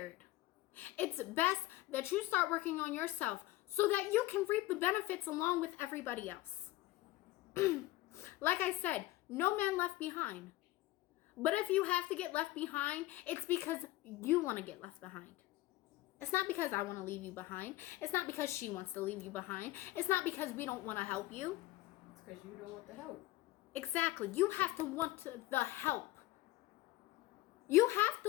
It's best that you start working on yourself so that you can reap the benefits along with everybody else. Like I said, no man left behind. But if you have to get left behind, it's because you want to get left behind. It's not because I want to leave you behind. It's not because she wants to leave you behind. It's not because we don't want to help you. It's because you don't want the help. Exactly. You have to want the help. You have to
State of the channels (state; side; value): quieter; right; 17.4 dB